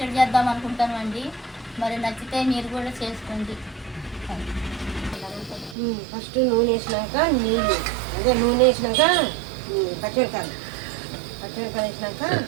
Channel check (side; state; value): left; drops out; at 5.8 s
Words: చేద్దాం అనుకుంటాను అండి. మరి నచ్చితే మీరు కూడా చేసుకోండి. ఫస్ట్ నూనె వేసినాక నీళ్ళు, అదే నూనె వేసినాక పచ్చిమిరకాయలు వేసినాక